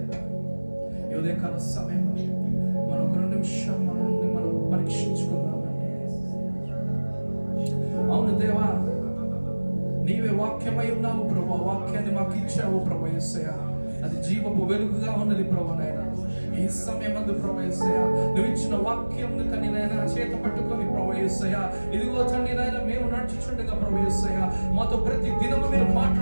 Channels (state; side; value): inverted; both; correlation -1.00